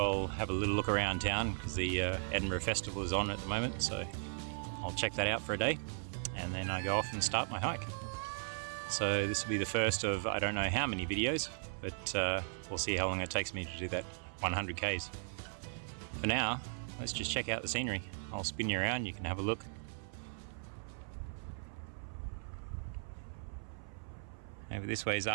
have a little look around town because the Edinburgh Festival is on at the moment, so I'll check that out for a day and then I go off and start my hike. So this will be the first of I don't know how many videos, but we'll see how long it takes me to do that 100 Ks. For now, let's just check out the scenery. I'll spin you around, you can have a look. Over this way is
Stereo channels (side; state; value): left; silent; 53 dB below the other